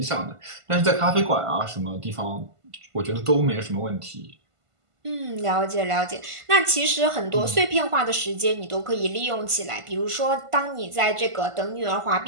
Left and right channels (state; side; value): late; left; 1.5 ms